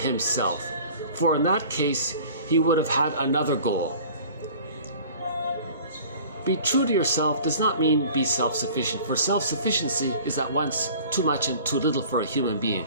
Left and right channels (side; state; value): both; inverted; correlation -0.45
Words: for in that case, he would have had another goal. Be true to yourself does not mean be self-sufficient, for self-sufficiency is at once too much and too little for a human